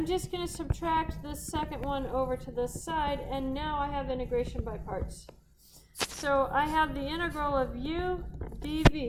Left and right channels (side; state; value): both; identical; correlation 1.00